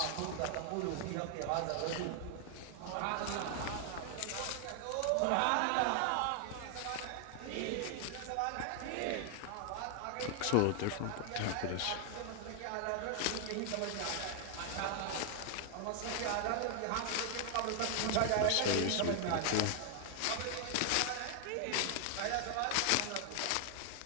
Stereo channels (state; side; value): different; both; correlation 0.00